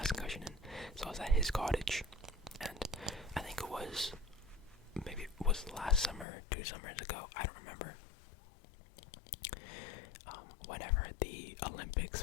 concussion in. So I was at his cottage, and I think it was last summer, 2 summers ago. I don't remember. Whenever the Olympics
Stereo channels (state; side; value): drops out; right; at 6.2 s